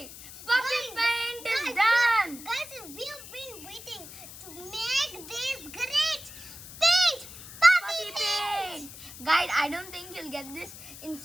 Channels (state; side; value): noise; left; hiss, 15 dB below the sound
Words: Puffy paint is done. Guys, we have been waiting to make this great paint. Puffy paint. Guys, I don't think you'll get this in